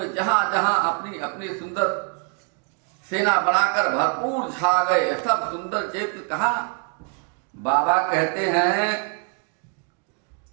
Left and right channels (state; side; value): quieter; left; 39.1 dB